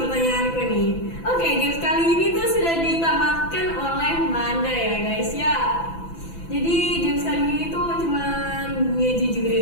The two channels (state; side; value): late; right; 6.0 ms